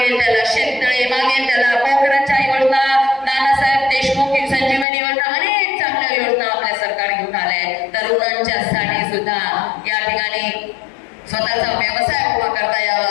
त्याला शेततळे, मागेल त्याला पोखराच्या योजना, नानासाहेब देशमुख संजीवनी योजना, अनेक चांगल्या योजना आपल्या सरकार घेऊन आलंय. तरुणांच्यासाठी सुद्धा या ठिकाणी स्वतःचा व्यवसाय उभा करता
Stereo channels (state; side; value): drops out; right; at 4.9 s